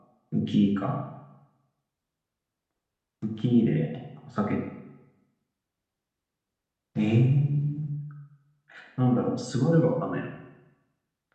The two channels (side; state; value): both; identical; correlation 1.00